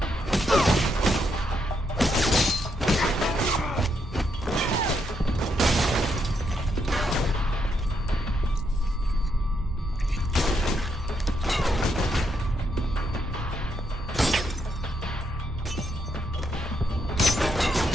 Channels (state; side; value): normal; both; correlation 0.78